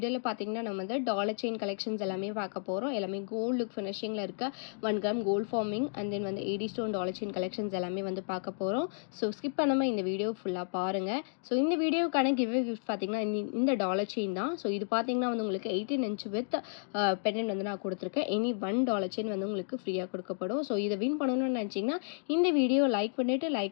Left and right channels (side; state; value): right; silent; digital silence